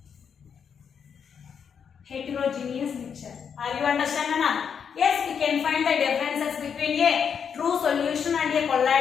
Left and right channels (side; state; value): right; quieter; 7.1 dB